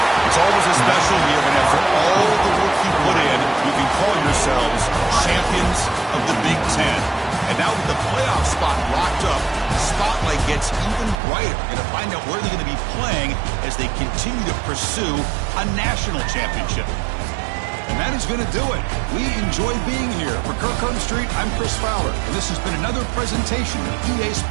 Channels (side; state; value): left; drops out; at 11.2 s